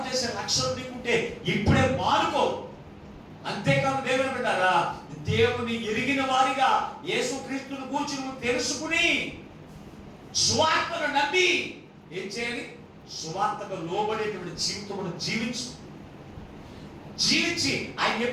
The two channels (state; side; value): identical; both; correlation 1.00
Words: చేసే లక్ష్యం నీకుంటే ఇప్పుడే మానుకో. అంతేకాదు దేవుని బిడ్డలారా, దేవుని ఎరిగిన వారిగా యేసుక్రీస్తును గూర్చి నువ్వు తెలుసుకుని సువార్తను నమ్మి ఏం చేయాలి? సువార్తకు లోబడేటువంటి జీవితమును జీవించి ఆయన